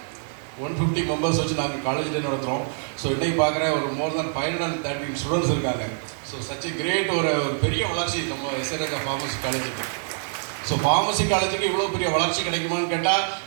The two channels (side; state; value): left; silent; digital silence